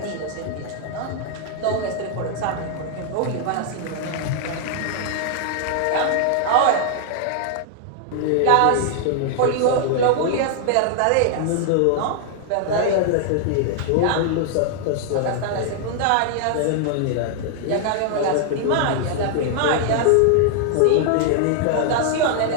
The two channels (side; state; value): both; different; correlation 0.00